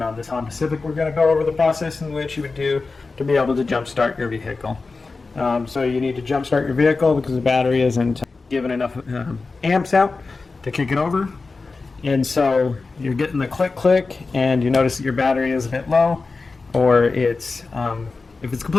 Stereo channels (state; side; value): quieter; right; 4.0 dB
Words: on this Honda Civic we're going to go over the process in which you would do to be able to jump start your vehicle. So you need to jump start your vehicle because the battery isn't giving enough amps out to kick it over, and so you're getting the click and you notice that your battery is a bit low, or it's if it's